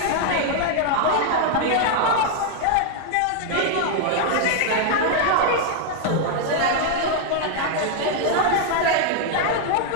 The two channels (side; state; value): both; different; correlation 0.00